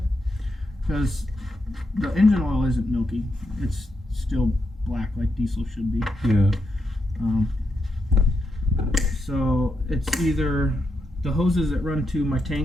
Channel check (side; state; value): both; normal; correlation 0.83